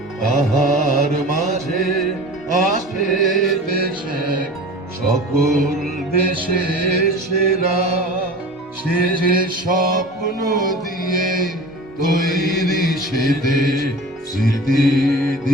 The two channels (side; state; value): both; normal; correlation 0.37